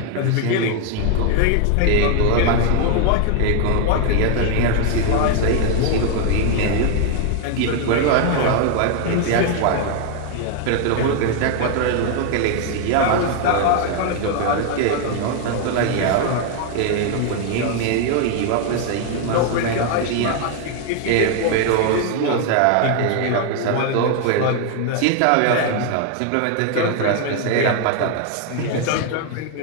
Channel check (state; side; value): different; both; correlation 0.00